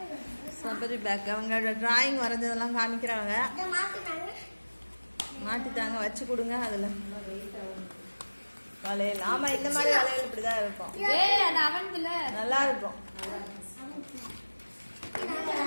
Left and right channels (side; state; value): both; inverted; correlation -1.00